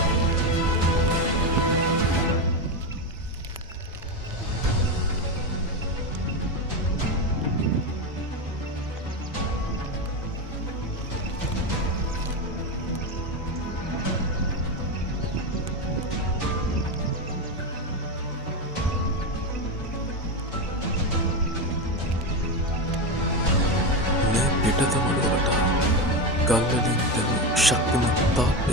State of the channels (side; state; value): both; normal; correlation 0.15